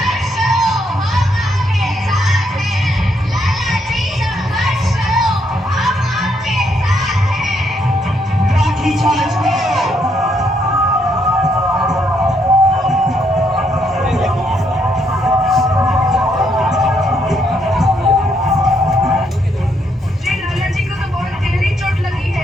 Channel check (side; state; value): both; normal; correlation 0.74